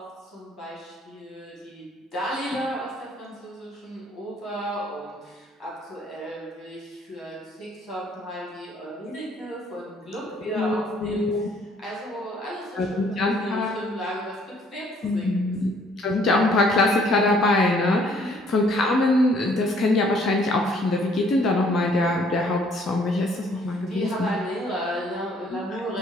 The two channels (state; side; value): normal; both; correlation 0.62